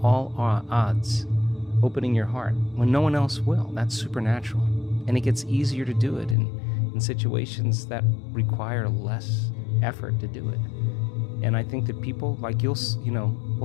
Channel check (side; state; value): right; drops out; at 6.4 s